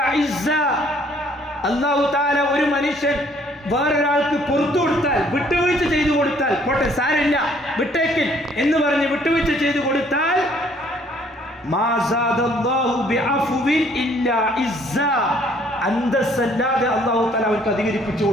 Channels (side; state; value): both; normal; correlation 0.62